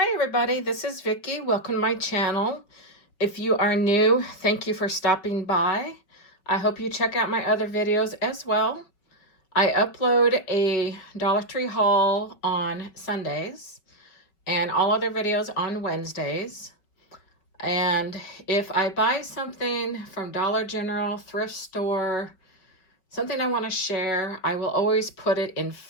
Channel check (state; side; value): late; right; 5.3 ms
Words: everybody, this is Vicky. Welcome to my channel. If you are new, thank you for stopping by. I hope you check out my other videos as well. I upload a Dollar Tree haul on Sundays and all other videos on Wednesdays. And if I buy something from Dollar General, thrift store, something I want to share, I will always put it in